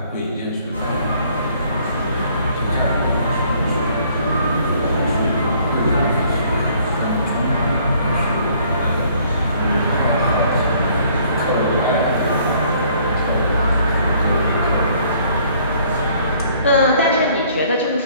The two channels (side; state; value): both; inverted; correlation -0.61